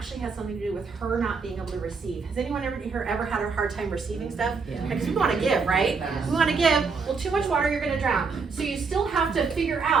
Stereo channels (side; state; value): left; quieter; 4.9 dB